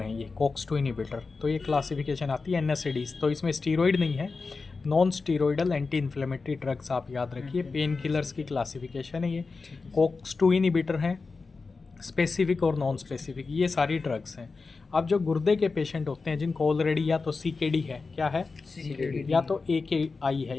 ये COX-2 इनिबिटर. तो ये क्लासिफिकेशन आती है NSAIDs. तो इसमें स्टीरॉइड नहीं है, नॉन स्टीरॉइडल एंटी इन्फ्लेमेटरी ड्रग्स आप याद रखिए. पेन किलर्स की क्लासिफिकेशन है ये. COX-2 इनिबिटर हैं, स्पेसिफिक और नॉन स्पेसिफिक, ये सारी ड्रग्स हैं. अब जो गुर्दे के पेशेंट होते हैं जिनको ऑलरेडी या तो CKD है, क्या है CKD, या तो AKI है.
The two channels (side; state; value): right; quieter; 4.2 dB